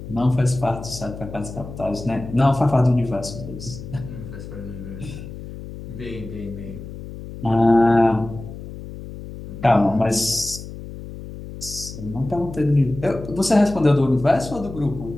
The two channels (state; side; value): noise; left; hum, 12 dB below the sound